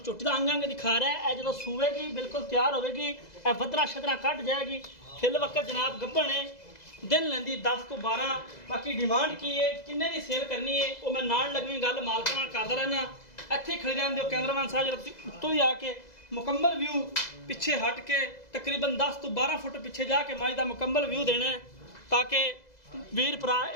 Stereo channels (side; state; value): right; late; 2.0 ms